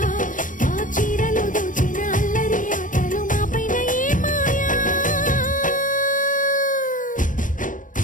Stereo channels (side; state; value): right; late; 0.38 ms